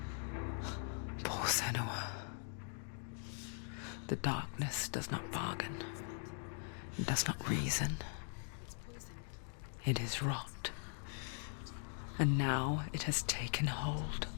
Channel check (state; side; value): silent; right; 50 dB below the other